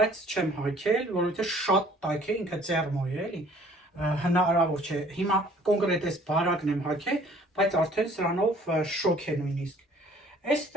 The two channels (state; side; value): normal; both; correlation 0.56